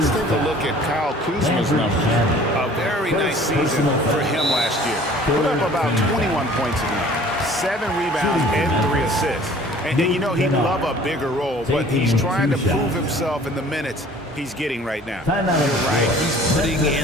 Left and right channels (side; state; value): both; normal; correlation 0.50